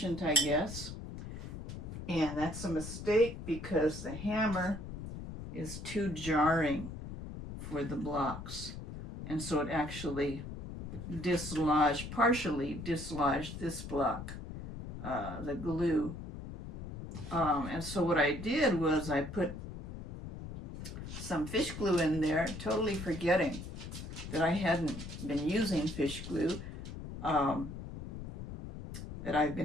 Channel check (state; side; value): noise; left; rumble, 9 dB below the sound